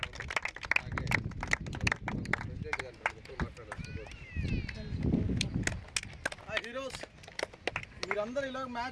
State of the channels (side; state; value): both; identical; correlation 1.00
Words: హీరోస్, మీరందరూ ఇలా